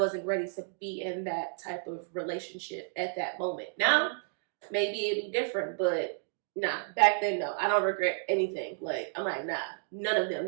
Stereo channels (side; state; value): left; silent; digital silence